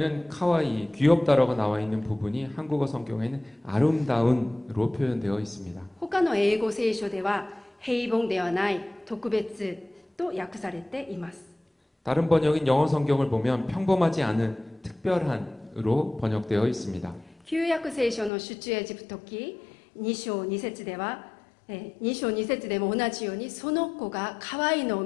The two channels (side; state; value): right; drops out; at 18.3 s